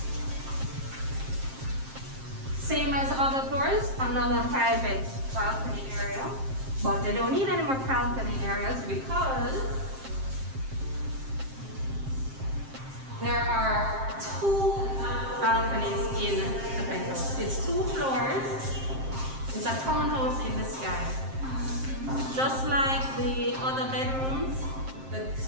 Same as other floors, another private balcony area. But they don't need any more balcony areas because there are 2 balconies in the penthouse. It's 2 floors. It's a townhouse in the sky. Just like the other bedrooms, the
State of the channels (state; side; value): late; left; 7.6 ms